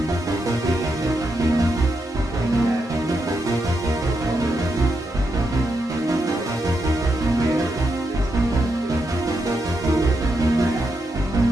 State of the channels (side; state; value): both; normal; correlation 0.83